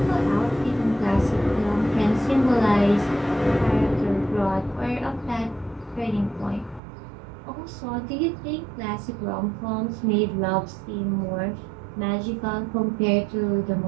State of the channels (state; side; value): drops out; left; at 6.8 s